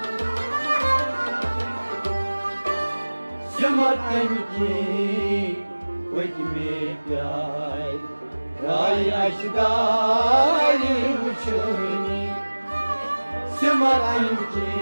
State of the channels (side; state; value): both; inverted; correlation -1.00